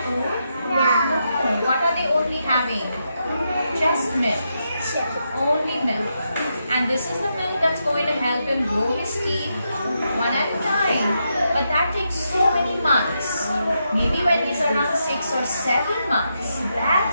food? No. What are they only having? Just milk. Only milk. And this is the milk that's going to help him grow his teeth one at a time. But that takes so many months. Maybe when he's around 6 or 7 months,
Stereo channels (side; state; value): both; inverted; correlation -0.83